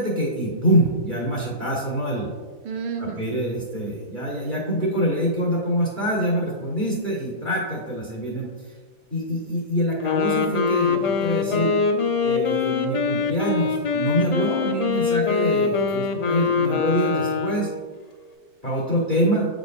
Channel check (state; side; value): late; left; 4.3 ms